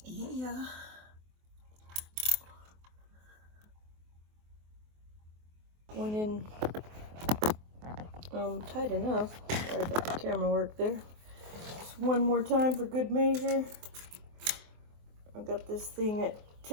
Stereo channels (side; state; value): left; late; 24 ms